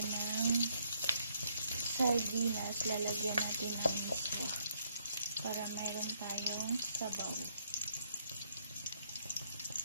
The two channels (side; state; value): both; inverted; correlation -0.72